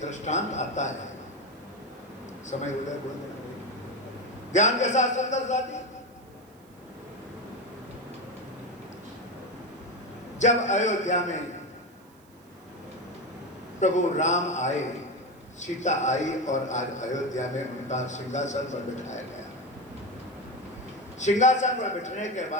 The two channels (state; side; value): noise; right; hiss, 30 dB below the sound